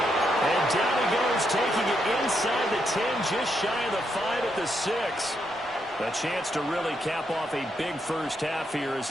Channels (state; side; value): normal; both; correlation 0.79